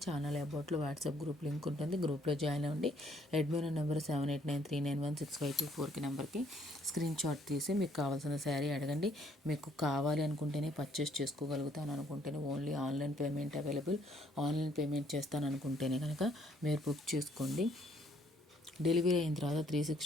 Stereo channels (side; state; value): both; normal; correlation 0.66